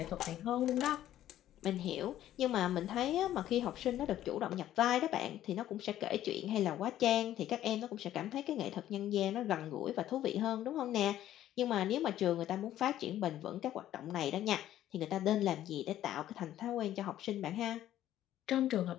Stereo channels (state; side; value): quieter; right; 12.6 dB